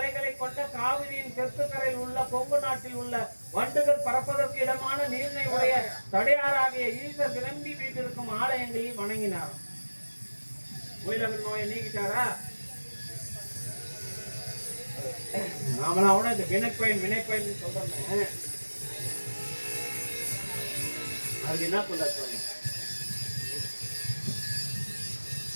கொண்ட காவிரியின் தெற்கு கரையில் உள்ள கொங்கு நாட்டில் உள்ள வண்டுகள் பறப்பதற்கு இடமான நீர்னை உடைய தடையாராகிய ஈசர் விளம்பி வீட்டிருக்கும் ஆலயங்களில் வணங்கினார். முயலகன் நோயை நீக்கிட்டாரா? நாமளாவோட இந்த வினைப்பயன் சொல்றேன். அதுக்கு என்ன சொல்ல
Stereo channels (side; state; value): both; inverted; correlation -1.00